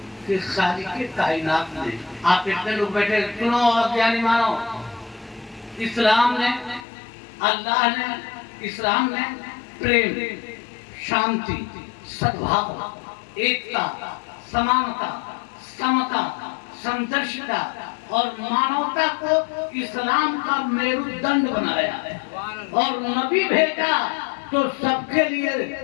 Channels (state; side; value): drops out; right; at 6.8 s